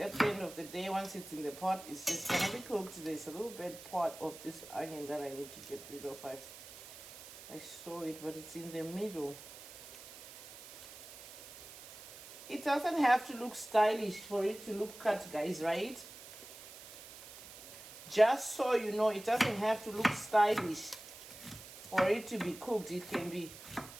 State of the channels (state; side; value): noise; right; hiss, 15 dB below the sound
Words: the end of the day, once it's in the pot, it's just gonna be cooked. There's a little bit part of this onion that I need to get rid of. I saw it, but it's in the middle. It doesn't have to look stylish for it to look cut, guys, right? Just so you know, it doesn't have to look stylish for it to be cooked. It can be